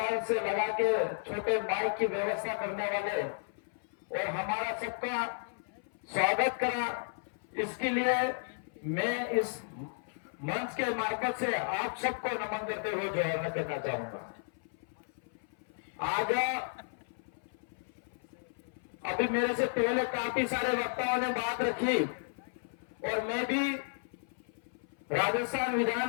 से लगा के छोटे माइक की व्यवस्था करने वाले और हमारा सबका स्वागत करा, इसके लिए मैं इस मंच के मार्फत से आप सबको नमन करते हुए जोड़ना करना चाहूंगा। आज अभी मेरे से पहले काफी सारे वक्ताओं ने बात रखी और मैं भी राजस्थान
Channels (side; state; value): right; silent; 55 dB below the other